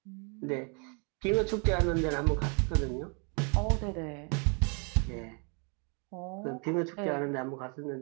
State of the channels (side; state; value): left; quieter; 35.9 dB